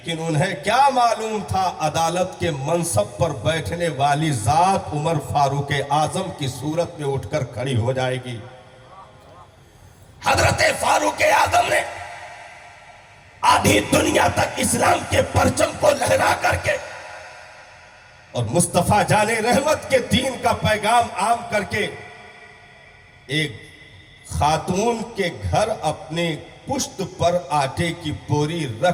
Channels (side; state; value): both; identical; correlation 1.00